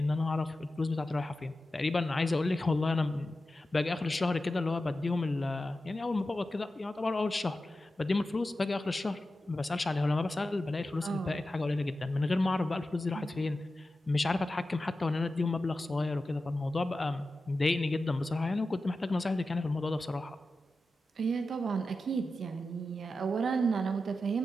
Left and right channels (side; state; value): both; normal; correlation 0.92